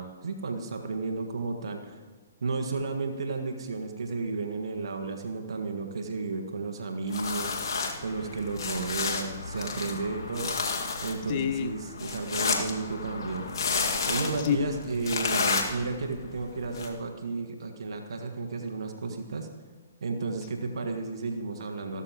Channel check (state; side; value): inverted; both; correlation -0.60